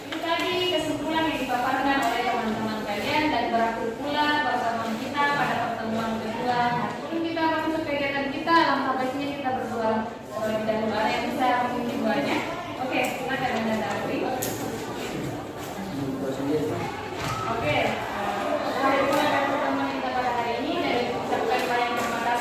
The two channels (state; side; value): identical; both; correlation 1.00